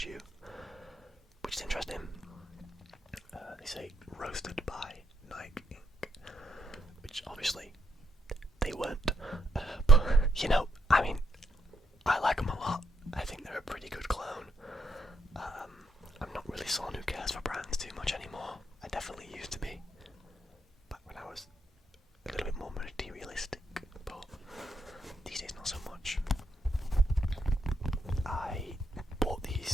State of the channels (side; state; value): both; normal; correlation 0.76